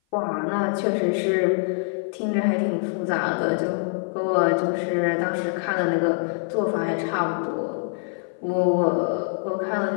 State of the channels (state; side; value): silent; right; 55 dB below the other